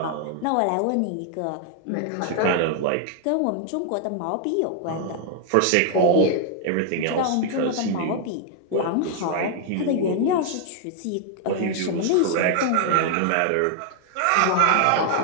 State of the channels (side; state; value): both; different; correlation 0.00